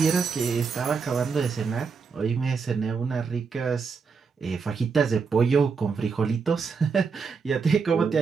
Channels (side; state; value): left; quieter; 5.3 dB